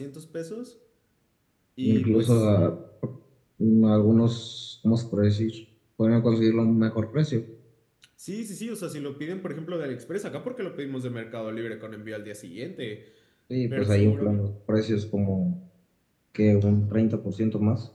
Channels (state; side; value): identical; both; correlation 1.00